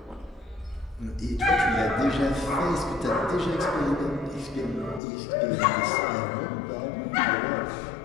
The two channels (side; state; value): right; drops out; at 5.0 s